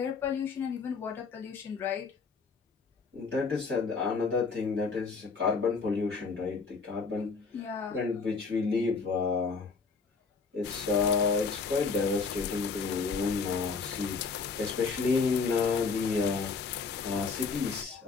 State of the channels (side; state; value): right; quieter; 4.8 dB